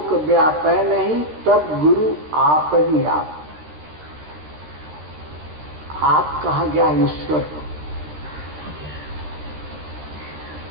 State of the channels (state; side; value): late; left; 13 ms